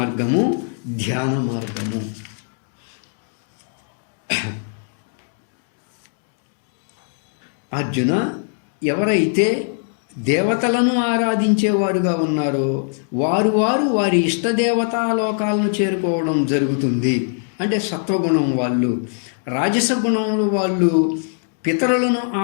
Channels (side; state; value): right; silent; digital silence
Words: ధ్యాన మార్గము. అర్జున, ఎవరైతే దేవతలను ఆరాధించేవారుగా ఉన్నారో వారు వారి ఇష్టదేవతాలోకాలను చేరుకోవడం జరుగుతుంది. అంటే సత్వగుణం వాళ్ళు. రాజస గుణములు వాళ్ళు పితరులను